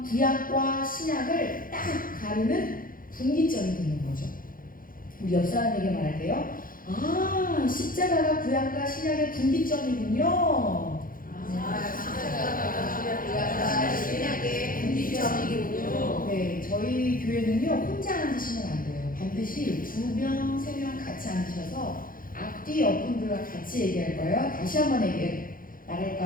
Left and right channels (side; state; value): right; late; 0.41 ms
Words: 구약과 신약을 딱 가르는 분기점이 되는 거죠. 우리 옆 사람에게 말할게요. 아, 십자가가 구약과 신약의 분기점이군요. 신약의 분기점이군요. 네, 저희 교회는요 혼자 앉으시면 안 돼요. 반드시 2명, 3명 같이 앉으셔서 앞뒤 옆분들과 같이 얘기할 거예요. 다시 한번